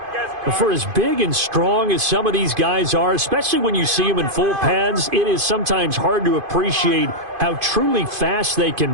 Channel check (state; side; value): late; left; 2.5 ms